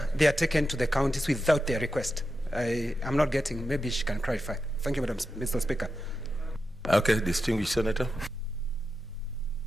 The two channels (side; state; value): both; normal; correlation 0.89